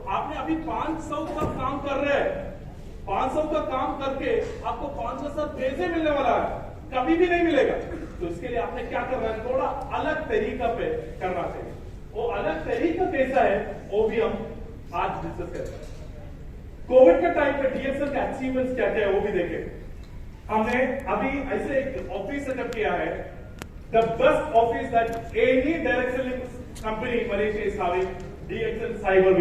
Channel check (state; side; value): identical; both; correlation 1.00